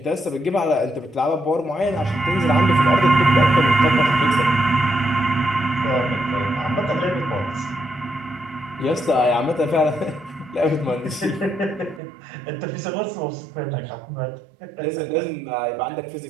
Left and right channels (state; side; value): drops out; left; at 12.0 s